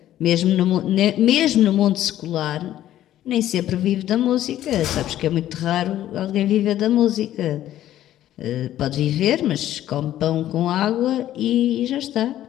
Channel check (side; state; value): right; quieter; 12.7 dB